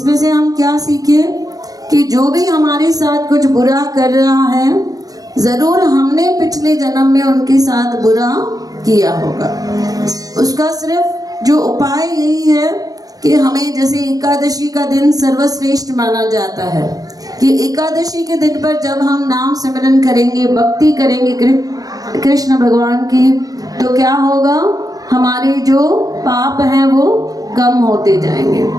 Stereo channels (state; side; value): late; left; 0.18 ms